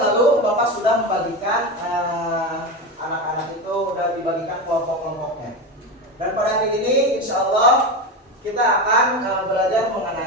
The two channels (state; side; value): normal; both; correlation 0.19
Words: lalu Bapak sudah membagikan anak-anak itu sudah dibagikan kelompok-kelompoknya. Dan pada hari ini insya Allah kita akan belajar